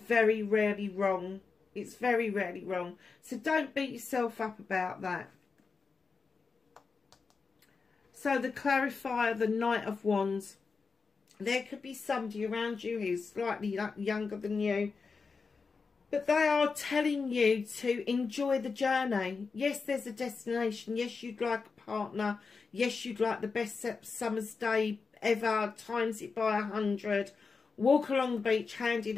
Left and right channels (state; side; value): quieter; right; 4.8 dB